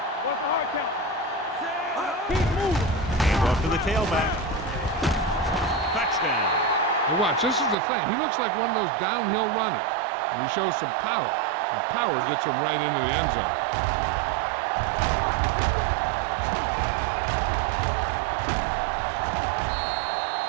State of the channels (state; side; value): drops out; left; at 7.8 s